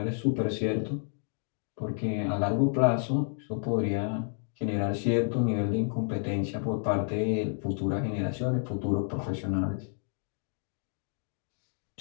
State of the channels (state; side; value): silent; right; digital silence